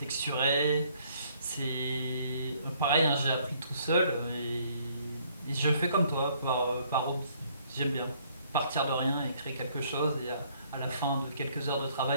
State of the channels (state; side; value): inverted; both; correlation -0.64